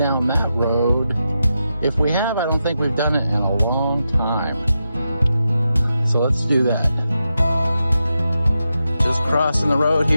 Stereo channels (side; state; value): both; inverted; correlation -0.88